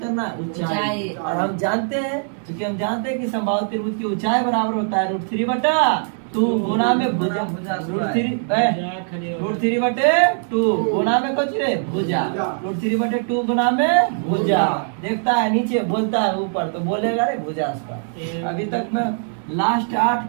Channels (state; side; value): silent; left; digital silence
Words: करना है? ऊंचाई। और हम जानते हैं, क्योंकि हम जानते हैं कि समबाहु त्रिभुज की ऊंचाई बराबर होता है √3/2 गुना में भुजा। √3/2 गुना में कुछ रे भुजा। √3/2 गुना में भुजा। देखता है नीचे, बोलता है ऊपर, तो बोलेगा रे भुजा उसका। अभी तक मैं लास्ट 8